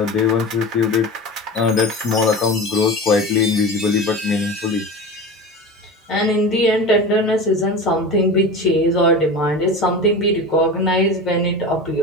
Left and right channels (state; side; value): normal; both; correlation 0.30